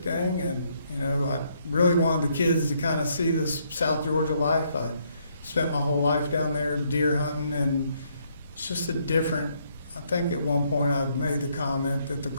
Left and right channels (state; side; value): inverted; both; correlation -0.71